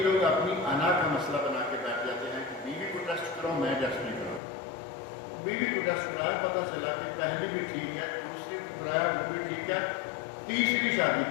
اپنی انا کا مسئلہ بنا کے بیٹھ جاتے ہیں کہ بیوی کو ٹیسٹ کرو، میں ٹیسٹ نہیں کروں۔ بیوی کو ٹیسٹ کرایا، پتہ چلا کہ پہلی بھی ٹھیک ہے، دوسری کو کرایا وہ بھی ٹھیک ہے، تیسری شادی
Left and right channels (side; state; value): right; drops out; at 4.4 s